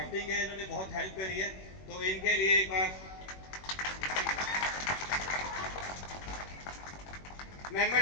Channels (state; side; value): late; right; 21 ms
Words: है इन्होंने बहुत हेल्प करी है, तो इनके लिए एक बार।